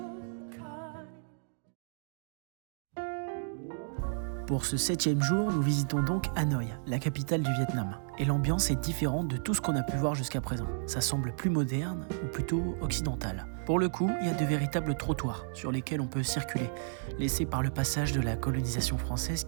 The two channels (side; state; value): left; silent; digital silence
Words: kind. Pour ce 7e jour, nous visitons donc Hanoï, la capitale du Vietnam. Et l'ambiance est différente de tout ce qu'on a pu voir jusqu'à présent. Ça semble plus moderne ou plutôt occidental. Pour le coup, il y a de véritables trottoirs sur lesquels on peut circuler, laissés par le passage de la colonisation française